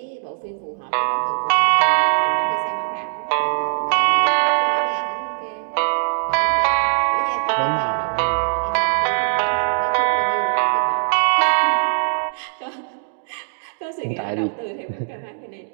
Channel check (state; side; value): silent; left; digital silence